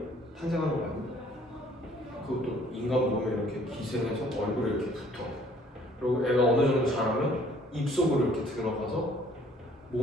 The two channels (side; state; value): both; normal; correlation 0.59